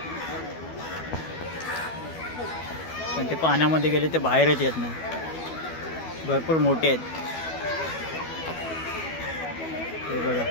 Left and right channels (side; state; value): right; late; 12 ms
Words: पण ते पाण्यामध्ये गेले ते बाहेरच येत नाही भरपूर मोठे आहेत ते बघा